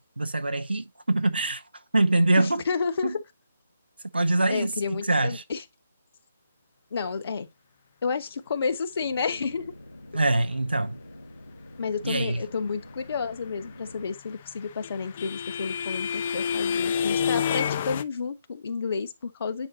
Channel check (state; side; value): inverted; both; correlation -0.83